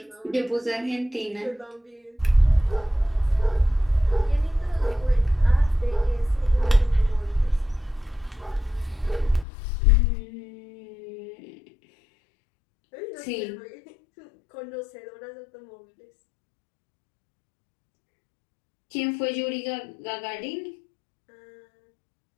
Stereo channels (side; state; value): right; drops out; at 9.5 s